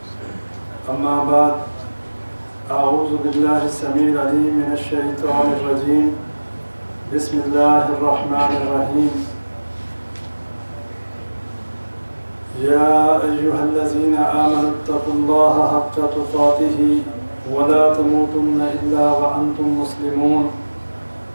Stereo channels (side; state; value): both; inverted; correlation -1.00